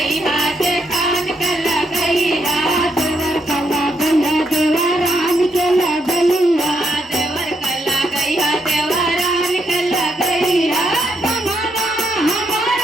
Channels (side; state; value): both; normal; correlation 0.78